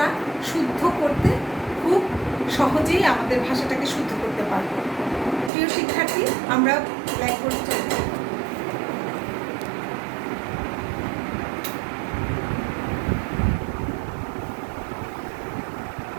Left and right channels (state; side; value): drops out; left; at 5.5 s